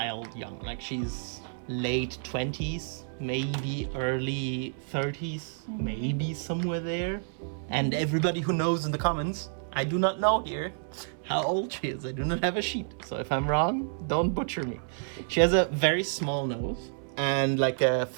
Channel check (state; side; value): silent; left; 58 dB below the other